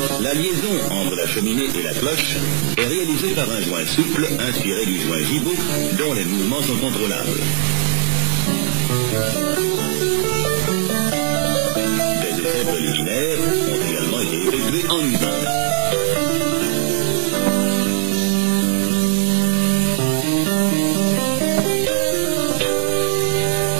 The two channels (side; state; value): left; silent; digital silence